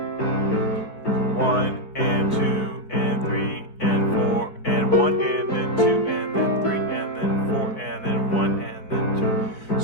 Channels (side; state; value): right; late; 4.6 ms